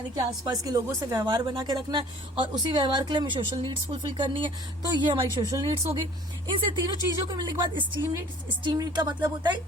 कि आसपास के लोगों से व्यवहार बना के रखना है, और उसी व्यवहार के लिए हमें सोशल नीड्स फुलफिल करनी है। तो ये हमारी सोशल नीड्स हो गई। इनसे तीनों चीजों को मिलने के बाद स्टीम नीड का मतलब होता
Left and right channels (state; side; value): normal; both; correlation 0.51